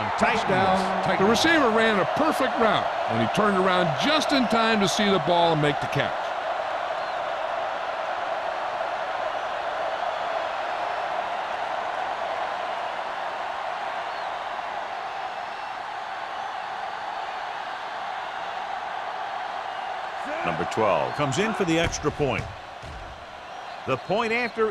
Titans. The receiver ran a perfect route, and he turned around just in time to see the ball and make the catch. Number 12 comes in for the extra point. The point after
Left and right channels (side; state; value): both; identical; correlation 1.00